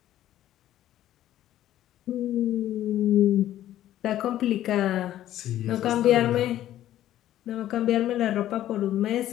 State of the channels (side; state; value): right; quieter; 12.8 dB